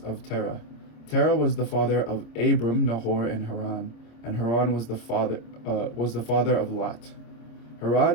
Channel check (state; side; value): late; right; 26 ms